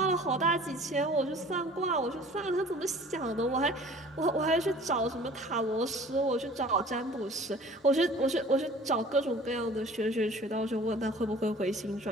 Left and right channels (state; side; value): normal; both; correlation 0.47